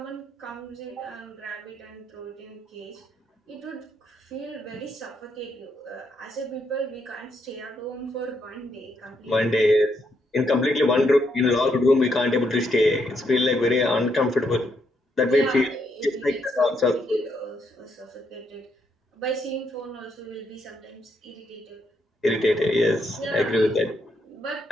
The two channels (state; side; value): normal; both; correlation 0.76